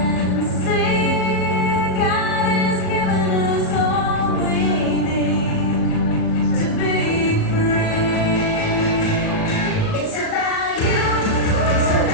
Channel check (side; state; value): right; late; 37 ms